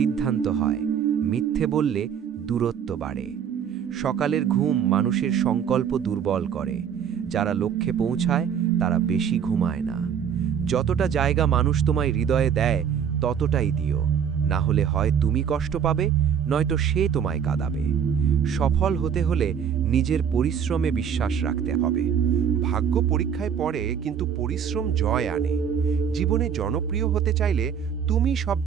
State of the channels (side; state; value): left; quieter; 7.9 dB